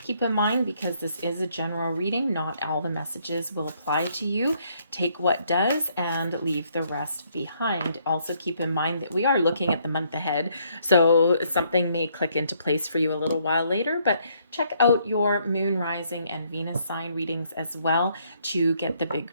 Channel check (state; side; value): inverted; both; correlation -0.69